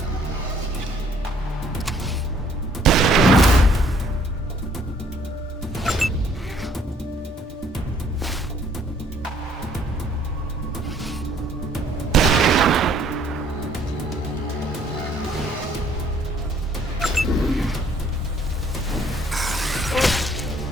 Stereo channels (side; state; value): both; normal; correlation 0.62